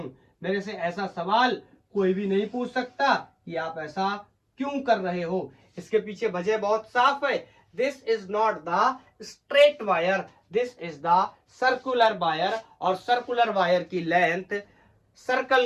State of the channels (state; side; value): identical; both; correlation 1.00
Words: मेरे से ऐसा सवाल कोई भी नहीं पूछ सकता कि आप ऐसा क्यों कर रहे हो, इसके पीछे वजह बहुत साफ है। This is not the straight wire, this is the circular wire, और सर्कुलर वायर की लेंथ